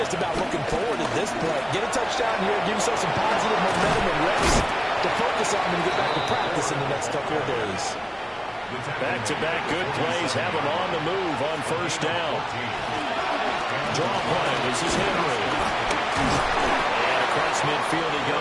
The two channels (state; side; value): identical; both; correlation 1.00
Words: just about looking forward at this point. Get a touchdown here, give yourself some positive momentum and reps to focus on and get back to practice in the next couple of days. Back-to-back good plays have him on the move on 1st down. Draw play. This is Henry. And across midfield he